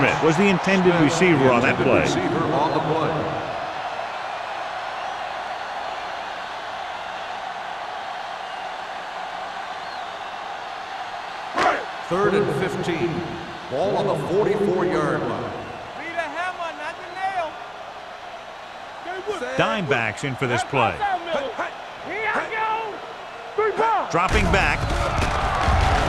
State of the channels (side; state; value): both; identical; correlation 1.00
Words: was the intended receiver on that play. Receiver on the play. Third and 15. Ball on the 44-yard line. Be the hammer, not the nail. Dime backs in for this play. Here I go. 3 points. Dropping back.